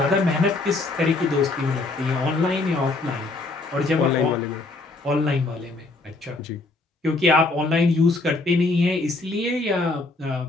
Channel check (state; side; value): quieter; right; 3.2 dB